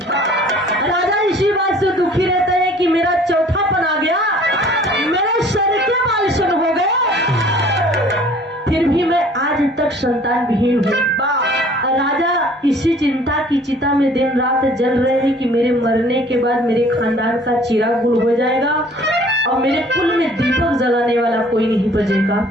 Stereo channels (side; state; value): both; normal; correlation 0.53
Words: राजा इसी बात से दुखी रहता है कि मेरा चौथापन आ गया, मेरे सर के बाल सुन हो गए, फिर भी मैं आज तक संतान विहीन हूँ। राजा इसी चिंता की चिता में दिन रात जल रहे हैं कि मेरे मरने के बाद मेरे खानदान का चिराग गुल हो जाएगा और मेरे कुल में दीपक जलाने वाला कोई नहीं बचेगा।